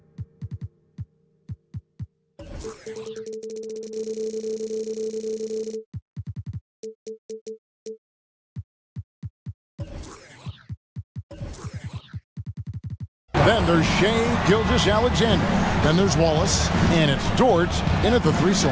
Then there's Shea Gilgeous-Alexander. Then there's Wallace. And it's Dort in at the 3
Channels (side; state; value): both; identical; correlation 1.00